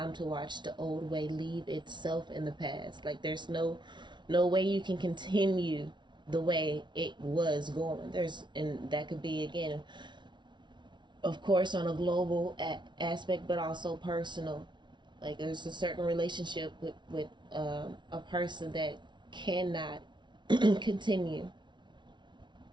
to watch the old way leave itself in the past. Like there's no way you can continue the way it was going. And that could be, again, of course, on a global aspect, but also personal. Like there's a certain relationship with a person that cannot continue,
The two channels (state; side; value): late; left; 0.23 ms